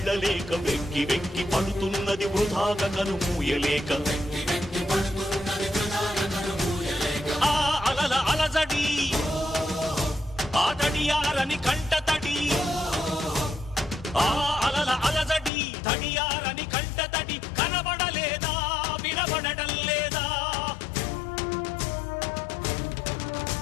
వెక్కి వెక్కి పడుతున్నది వృధాగా కనుమూయలేక ఆ అలల అలజడి ఆ తడియారని కంటతడి ఆ అలల అలజడి తడియారని కంటతడి కనబడలేదా వినబడటం లేదా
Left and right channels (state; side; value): drops out; right; at 15.5 s